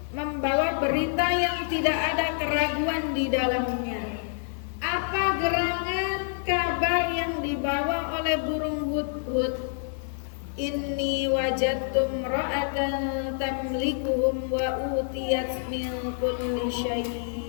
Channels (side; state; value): right; silent; 60 dB below the other